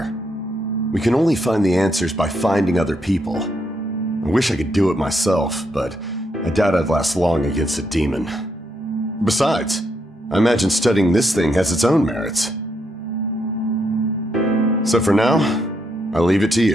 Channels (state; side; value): normal; both; correlation 0.78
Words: We can only find the answers by finding other people. I wish I could do it myself, but I doubt I'd last long against a demon. Besides, I imagine studying this thing has its own merits. So for now, I'll leave it to